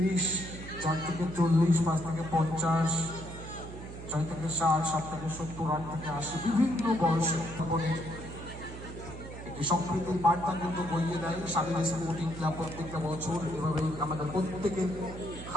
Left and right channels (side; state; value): right; noise; hum, 11 dB below the sound